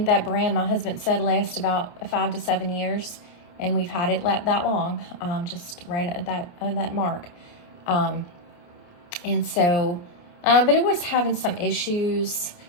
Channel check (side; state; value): right; late; 29 ms